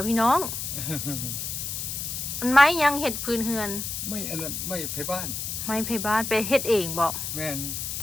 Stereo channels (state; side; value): noise; left; hiss, 4 dB below the sound